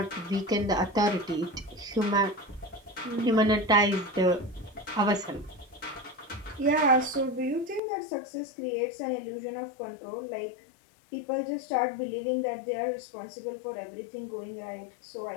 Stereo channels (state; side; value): drops out; right; at 7.8 s